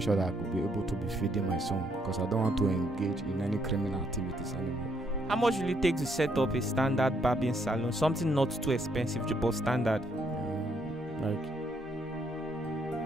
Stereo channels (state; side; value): normal; both; correlation 0.72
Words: sure that I could be able to be feeding my son, because I don't want to engage in any criminal activities anymore. How much will it take to set up a standard barbing salon? Something not too expensive, but standard.